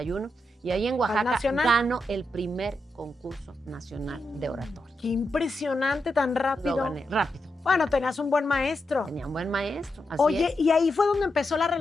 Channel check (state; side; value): normal; both; correlation 0.85